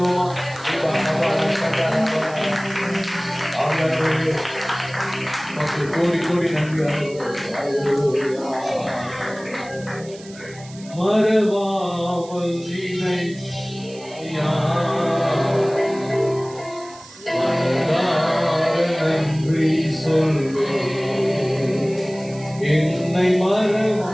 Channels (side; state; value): right; noise; hiss, 20 dB below the sound